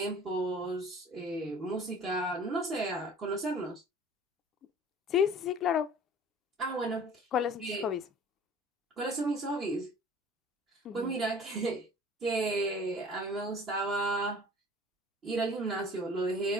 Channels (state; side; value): normal; both; correlation 0.47